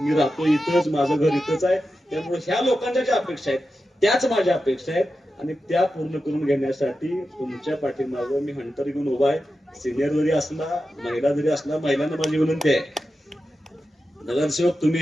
राहतो इथंच, माझं घर इथंच आहे. त्यामुळे ह्या लोकांच्या ज्या अपेक्षा आहेत त्याच माझ्या अपेक्षा आहेत. आणि त्या पूर्ण करून घेण्यासाठी तुमच्या पाठीमागं मी हंटर घेऊन उभा आहे. सिनियर जरी असला, महिला जरी असला, महिलांना माझी विनंती आहे, नगरसेवक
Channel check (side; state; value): both; normal; correlation 0.91